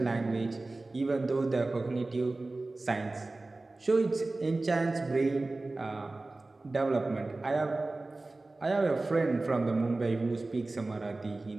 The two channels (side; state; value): left; quieter; 3.1 dB